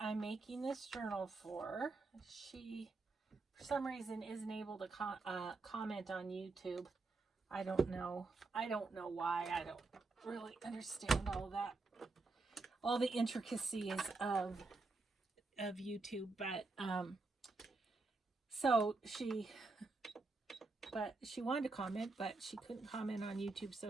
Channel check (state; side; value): quieter; left; 3.6 dB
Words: I'm making this journal for. She, for some reason, isn't able to comment on YouTube. I don't know. I don't know why. I don't really understand all the intricacies of YouTube. But so she wanted to comment, but she couldn't comment on YouTube.